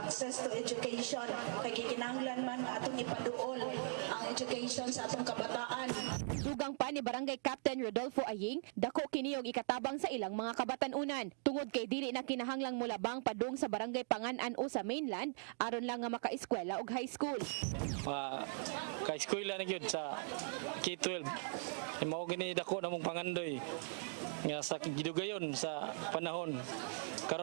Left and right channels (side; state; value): left; silent; digital silence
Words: to education. Kay gikinahanglan man nga atong ipaduol ang education sa atong kabataan. Dugang pa ni Barangay Captain Rodolfo Aying, dako kini og ikatabang sa ilang mga kabatan-unan. Tungod kay dili na kinahanglang mulabang padung sa Barangay Pangan-an o sa mainland aron lang nga maka-eskwela og high school. Ka-eskwela na gyud sa K-12. Mao gini dako namong pangandoy nga sa gidugayon sa panahon